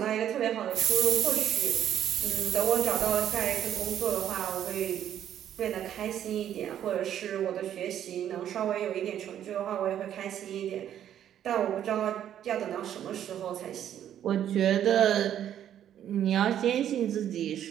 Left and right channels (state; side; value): quieter; left; 10.5 dB